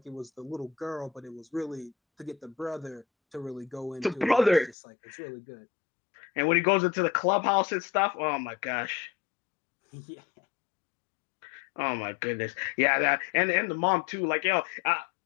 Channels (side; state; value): right; drops out; at 4.8 s